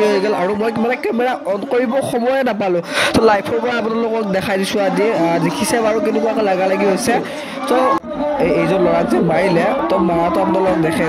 হৈ গ'ল আৰু মই মানে কেমেৰা অন কৰিব সময়ে নাপালোঁ তো লাইভৰ পৰা আপোনালোকক দেখাই দিছোঁ আজি দেখিছে বাৰু কেনেকুৱাকৈ লাগালাগি হৈছে তো এইজন ল'ৰাক যে মাৰিলে তো মাৰাটো আপোনালোকক দেখাই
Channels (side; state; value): both; identical; correlation 1.00